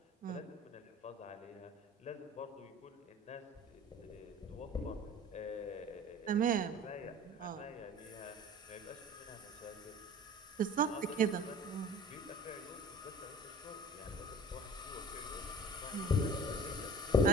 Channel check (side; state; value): both; normal; correlation 0.43